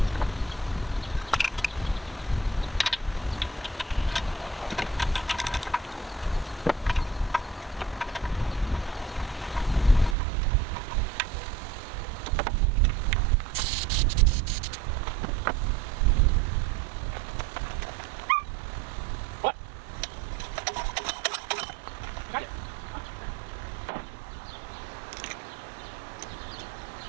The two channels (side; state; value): left; drops out; at 10.2 s